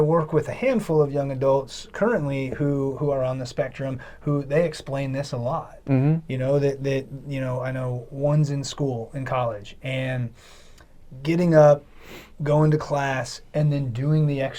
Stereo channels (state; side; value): identical; both; correlation 1.00